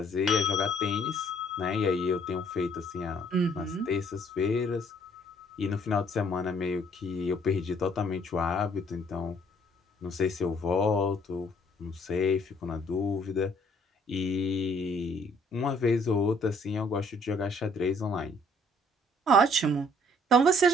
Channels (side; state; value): both; normal; correlation 0.62